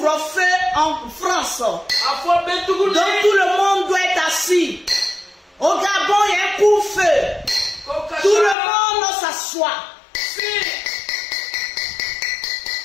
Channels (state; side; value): drops out; right; at 8.6 s